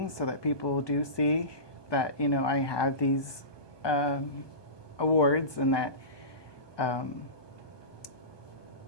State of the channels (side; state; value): right; late; 1.2 ms